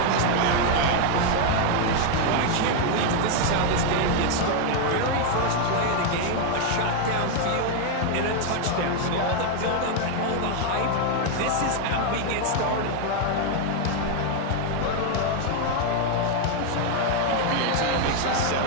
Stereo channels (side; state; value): both; different; correlation 0.01